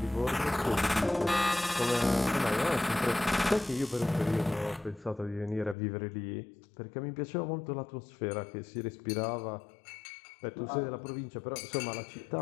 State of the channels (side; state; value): right; drops out; at 5.8 s